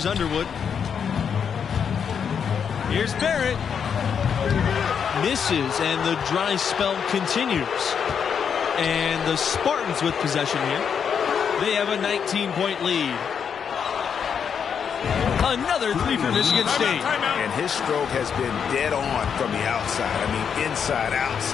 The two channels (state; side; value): quieter; right; 7.2 dB